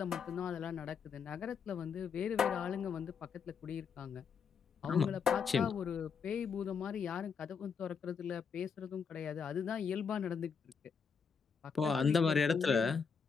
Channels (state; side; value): quieter; right; 6.1 dB